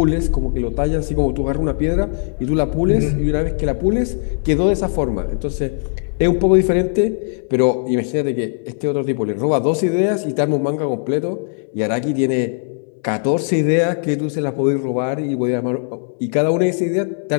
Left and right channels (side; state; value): right; silent; 61 dB below the other